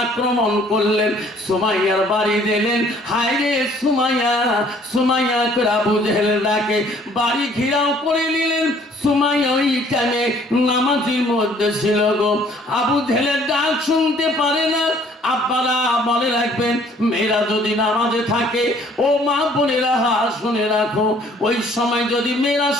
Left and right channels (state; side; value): normal; both; correlation 0.58